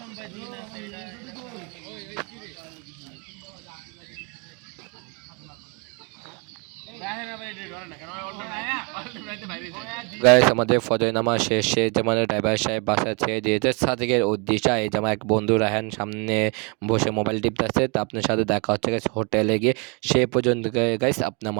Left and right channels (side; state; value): left; quieter; 33.2 dB